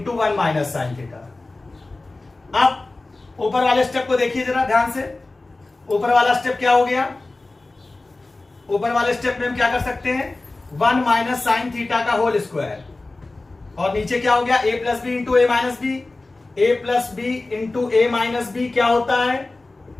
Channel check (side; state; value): right; quieter; 3.2 dB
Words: 1 minus sine theta. अब ऊपर वाले स्टेप को देखिए जरा ध्यान से, ऊपर वाला स्टेप क्या हो गया, ऊपर वाले स्टेप में हम क्या कर सकते हैं, 1 माइनस साइन थीटा का होल स्क्वायर, और नीचे क्या हो गया, a plus B into A minus B, a plus B into A minus B क्या होता है,